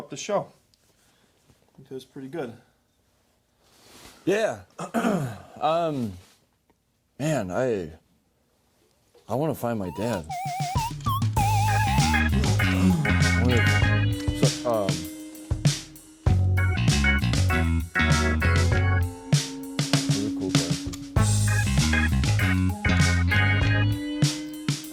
the show. I think it was pretty good. Yeah. Man, I want to find my dad. Really cool glasses.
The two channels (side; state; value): both; identical; correlation 1.00